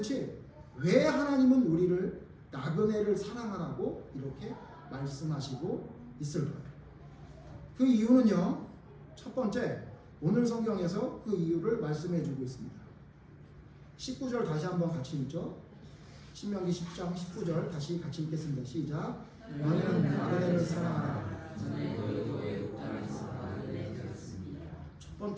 왜 하나님은 우리를 나그네를 사랑하라고 이렇게 말씀하시고 있을까요? 그 이유는요. 첫 번째 오늘 성경에서 그 이유를 말씀해 주고 있습니다. 19절 다시 한번 같이 읽죠. 신명기 10장 19절 다시 같이 읽겠습니다. 시작. 너희는 나그네를 사랑하라.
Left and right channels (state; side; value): identical; both; correlation 1.00